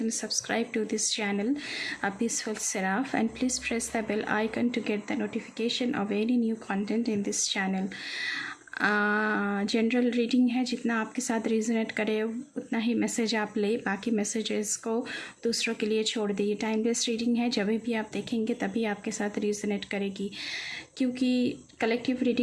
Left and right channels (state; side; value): identical; both; correlation 1.00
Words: and subscribe to this channel, A Peaceful Seraph, and please press the bell icon to get the notification of any new content in this channel. General reading है, जितना आपके साथ resonate करे उतना ही message आप ले, बाकी messages को दूसरों के लिए छोड़ दीजिए। टाइमलेस रीडिंग है, जब भी आप देखेंगे तभी आपके साथ रिजोनेट करेगी, क्योंकि कलेक्टिव